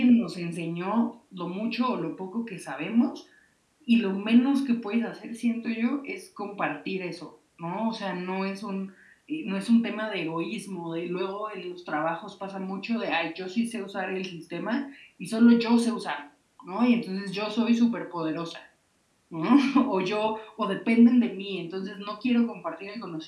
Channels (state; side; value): identical; both; correlation 1.00